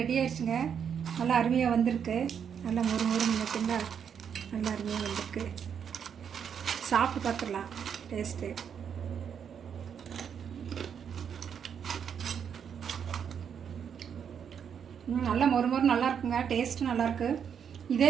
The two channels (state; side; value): quieter; left; 7.7 dB